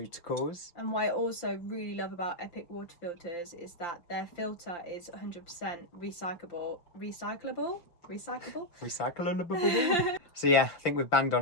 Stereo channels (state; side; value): late; right; 5.8 ms